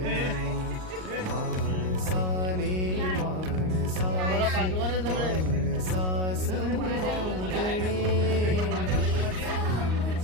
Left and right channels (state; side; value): late; left; 38 ms